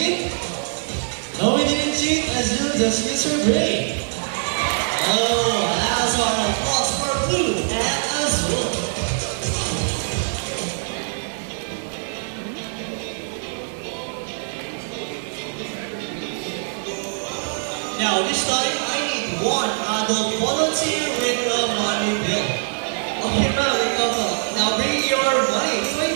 No, we didn't cheat. Azul just used her brain. Oh, that's our applause for Blue and Azul. Now, this time I need 1 adult volunteer with a money bill. Okay, now bring your money.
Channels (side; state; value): left; silent; 64 dB below the other